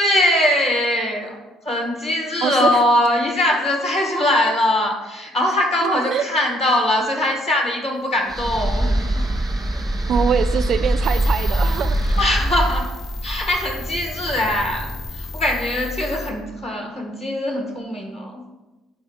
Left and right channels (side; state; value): both; normal; correlation 0.68